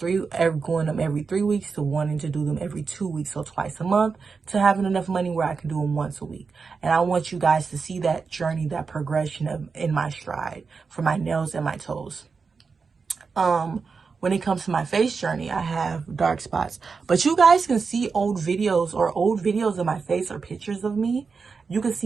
them every 3 weeks to wanting to do them every 2 weeks, so twice a month, to having enough money where I can do them once a week. And I want you guys to see that journey, that progression in my stride for my nails and my toes. When it comes to my face journey, I have dark spots, but you guys can see old videos of my face or pictures of me. You can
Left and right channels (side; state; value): left; quieter; 5.0 dB